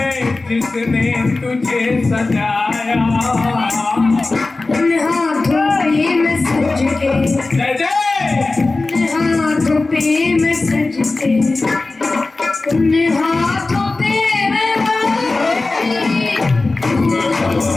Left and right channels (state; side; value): quieter; right; 3.4 dB